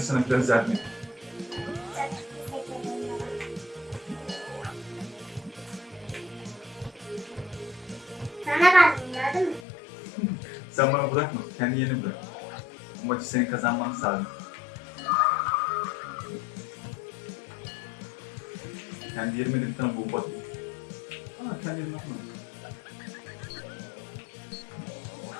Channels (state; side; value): drops out; right; at 9.7 s